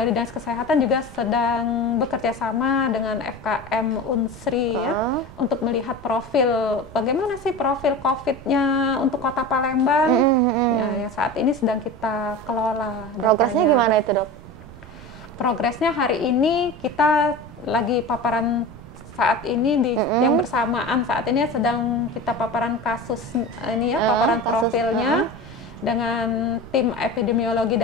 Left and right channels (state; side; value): noise; right; rumble, 18 dB below the sound